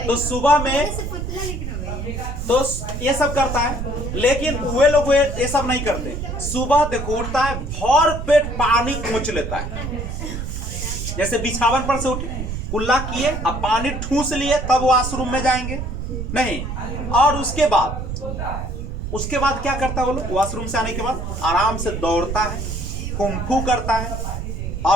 तो सुबह में तो ये सब करता है, लेकिन वे लोग ये सब नहीं करते। सुबह देखो उठता है, भर पेट पानी खोच लेता है, जैसे बिछावन पर से उठे, कुल्ला किए, अब पानी ठूस लिए, तब वॉशरूम में जाएंगे नहीं। और उसके बाद क्या करता है वो लोग? वॉशरूम से आने के बाद आराम से दौड़ता है, कुंफू करता है,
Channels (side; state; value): right; noise; rumble, 5 dB below the sound